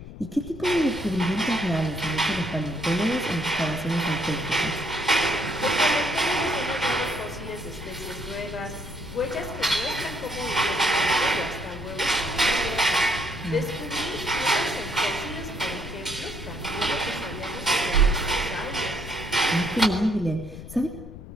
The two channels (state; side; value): noise; left; rumble, 13 dB below the sound